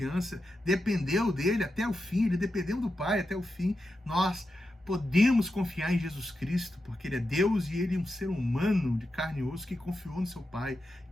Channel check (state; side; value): normal; both; correlation 0.89